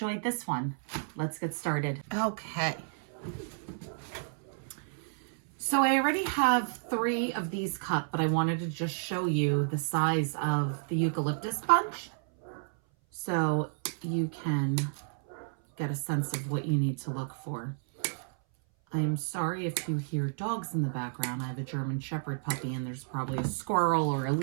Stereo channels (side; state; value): left; silent; 57 dB below the other